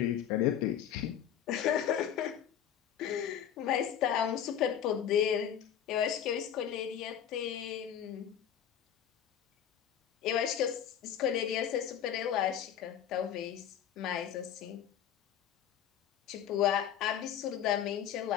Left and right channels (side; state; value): right; quieter; 9.6 dB